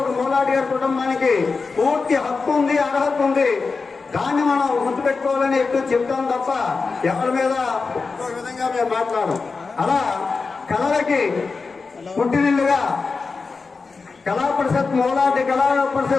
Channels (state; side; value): quieter; right; 4.5 dB